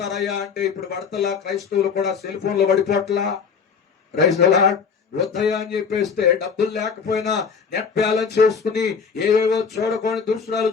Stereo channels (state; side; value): quieter; right; 6.0 dB